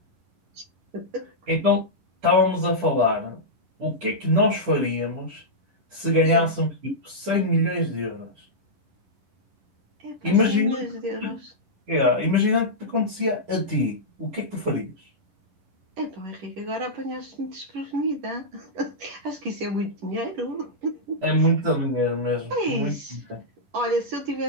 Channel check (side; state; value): left; late; 11 ms